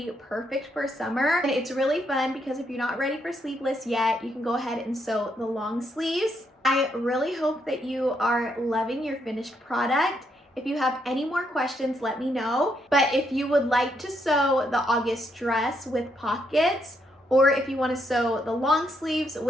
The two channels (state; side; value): normal; both; correlation 0.76